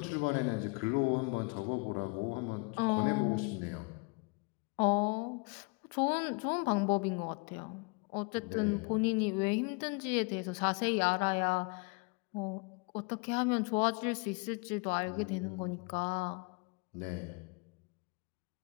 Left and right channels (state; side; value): quieter; right; 31.4 dB